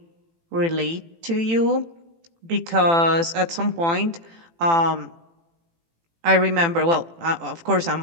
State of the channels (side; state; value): left; late; 18 ms